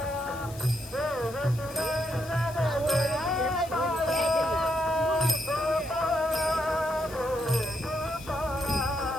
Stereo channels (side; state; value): left; noise; hiss, 18 dB below the sound